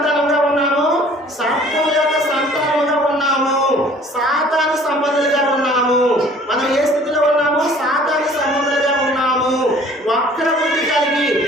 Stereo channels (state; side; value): normal; both; correlation 0.52